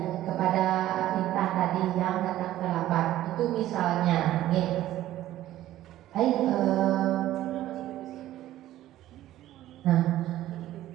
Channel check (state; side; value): quieter; left; 13.9 dB